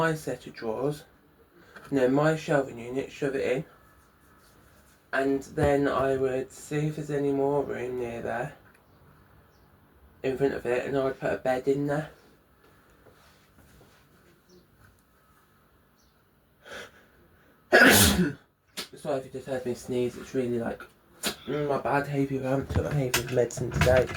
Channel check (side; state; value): both; identical; correlation 1.00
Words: set of drawers, my shelving unit, shove it in, And then I would see if there's any more room near there, in front of it, and I would put a bed in there. Sorry if you just heard me sneeze, it's really like my bad hay fever. I haven't took my hay fever medicine today.